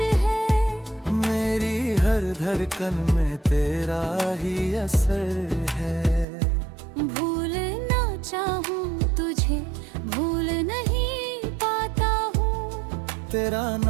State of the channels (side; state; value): left; drops out; at 6.2 s